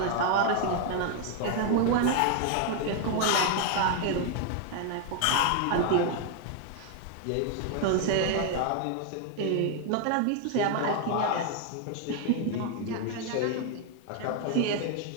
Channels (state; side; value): different; both; correlation 0.01